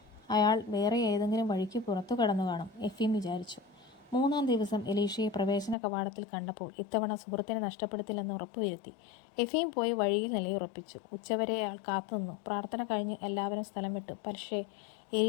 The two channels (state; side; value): drops out; right; at 5.8 s